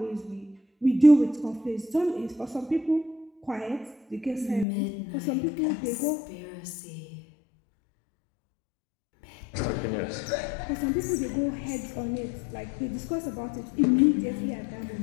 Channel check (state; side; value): drops out; right; at 4.7 s